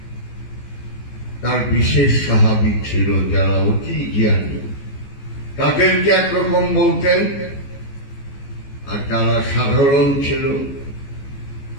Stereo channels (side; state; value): right; late; 15 ms